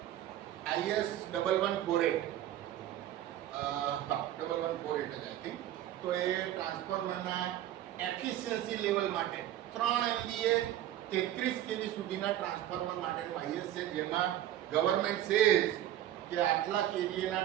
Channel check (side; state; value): left; quieter; 12.6 dB